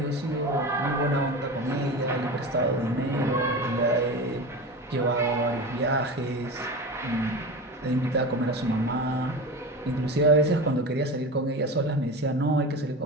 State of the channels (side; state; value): both; normal; correlation 0.28